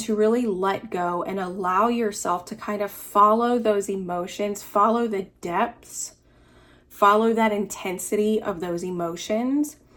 to really let go and allow yourself to kind of follow those emotions, follow the depths, follow that intensity of those emotions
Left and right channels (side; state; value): both; identical; correlation 1.00